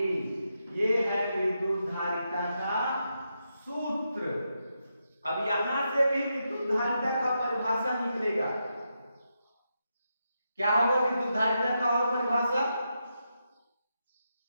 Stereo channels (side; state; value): both; inverted; correlation -0.85